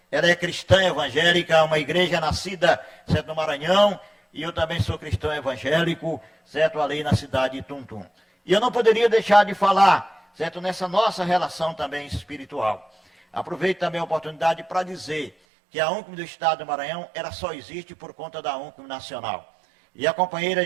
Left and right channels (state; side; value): drops out; left; at 15.3 s